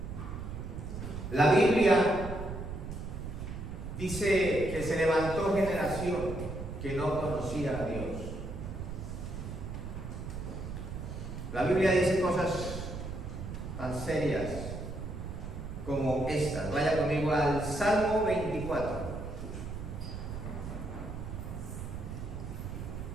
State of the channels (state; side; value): noise; right; rumble, 7 dB below the sound